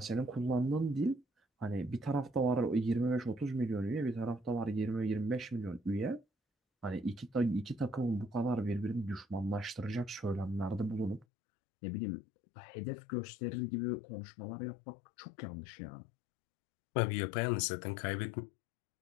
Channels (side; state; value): right; drops out; at 11.2 s